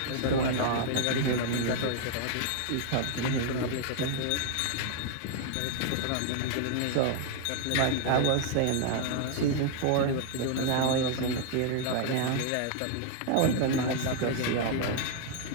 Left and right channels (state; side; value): different; both; correlation 0.00